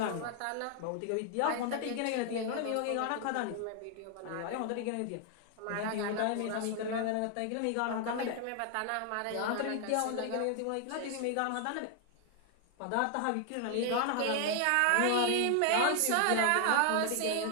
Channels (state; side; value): different; both; correlation 0.00